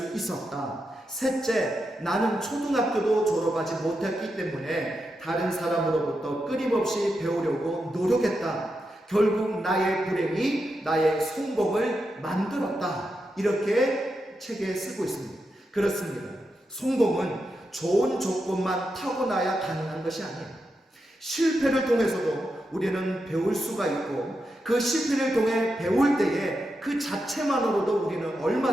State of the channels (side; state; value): both; normal; correlation 0.86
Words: 있었다. 셋째, 나는 초등학교도 졸업하지 못했기 때문에 다른 사람으로부터 끊임없이 배우려고 노력했다. 결국 나의 불행이 나의 성공을 만들었다. 이렇게 책에 쓰고 있습니다. 그렇습니다. 성공은 좋은 조건만 타고나야 가능한 것이 아니에요. 실패를 통해서도 우리는 배울 수가 있고 그 실패를 통해 배울 때에 그 자체만으로도 우리는